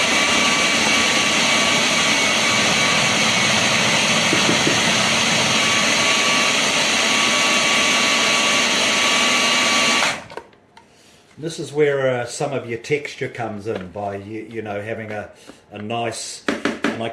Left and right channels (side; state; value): both; identical; correlation 1.00